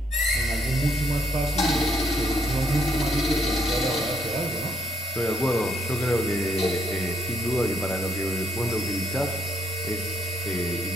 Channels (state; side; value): normal; both; correlation 0.72